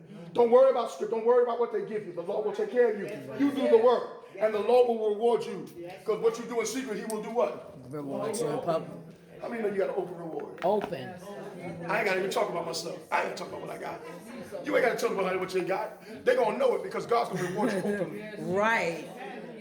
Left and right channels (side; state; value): both; identical; correlation 1.00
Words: Don't worry about script. Don't worry about what they give you. The Lord will take care of you. You do the work, and the Lord will reward you. Because what you do in secret, he will do what? Reward you in public. How many know you got an open reward? Open. I ain't got to even talk about myself. I ain't got to talk about what I got. You ain't got to tell them what you got. They're going to know it because God's going to reward you openly. Right.